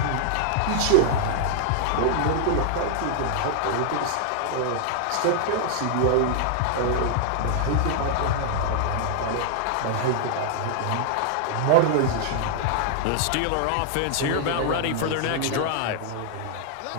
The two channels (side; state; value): both; different; correlation -0.01